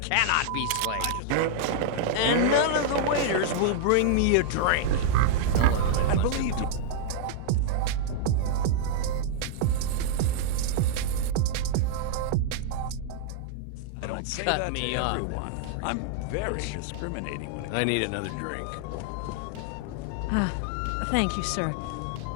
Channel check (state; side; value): different; both; correlation -0.01